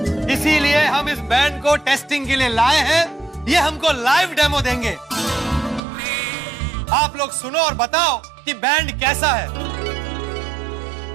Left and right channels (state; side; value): drops out; left; at 5.8 s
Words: इसीलिए हम इस बैंड को टेस्टिंग के लिए लाए हैं। ये हमको लाइव डेमो देंगे। आप लोग सुनो और बताओ कि बैंड कैसा है।